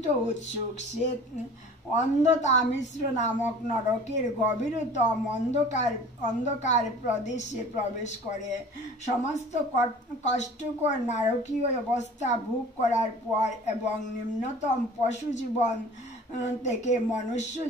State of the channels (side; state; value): both; normal; correlation 0.44